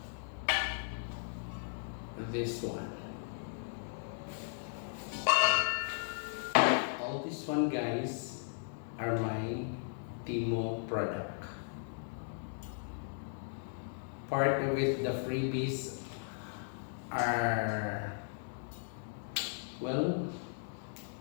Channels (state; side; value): silent; right; digital silence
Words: This one. All this one, guys, are my Temu product. Part of it, the freebies are, well,